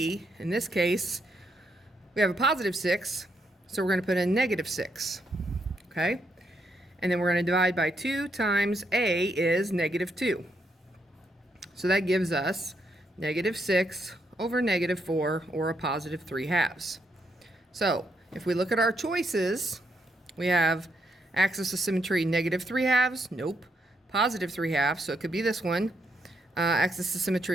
in this case, we have a positive 6, so we're going to put in negative 6. Okay? And then we're going to divide by 2 times a is negative 2. So that gives us negative 6 over negative 4, or a positive 3/2. So if we look at our choices, we have axis of symmetry negative 3/2, nope, positive 3/2, so it could be this one. Axis of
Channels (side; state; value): both; normal; correlation 0.77